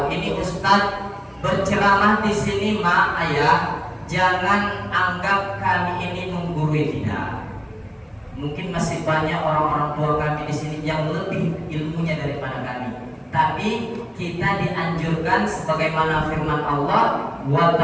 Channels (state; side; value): identical; both; correlation 1.00